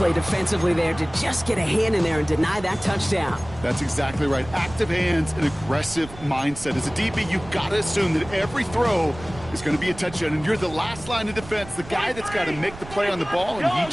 defensively there to just get a hand in there and deny that touchdown. That's exactly right. Active hands and aggressive mindset. As a DB, you've got to assume that every throw is going to be a touchdown, and you're the last line of defense, the guy that's got to make the play on the ball, and he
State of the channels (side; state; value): right; noise; rumble, 16 dB below the sound